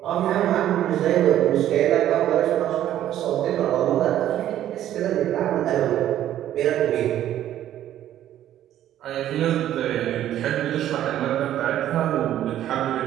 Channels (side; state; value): left; quieter; 12.0 dB